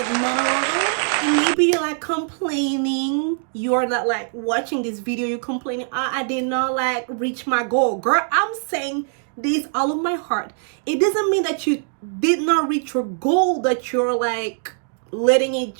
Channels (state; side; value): silent; left; 64 dB below the other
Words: mom. And maybe you're like complaining, you're not like watching this video, you're complaining, I did not like reach my goal. Girl, I'm saying this all of my heart. It doesn't mean that you did not reach your goal, that you're like letting it